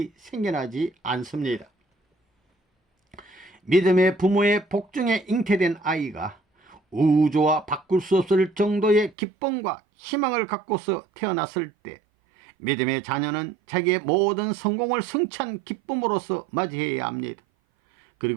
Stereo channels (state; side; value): drops out; left; at 9.2 s